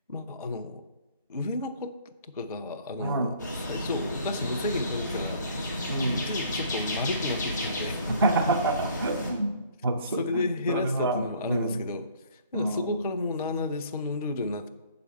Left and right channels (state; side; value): inverted; both; correlation -0.56